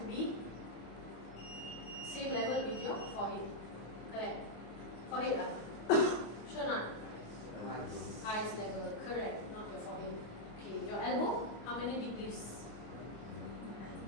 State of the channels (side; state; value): right; late; 25 ms